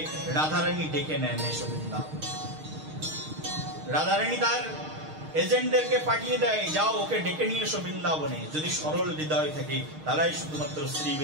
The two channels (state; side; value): late; left; 6.5 ms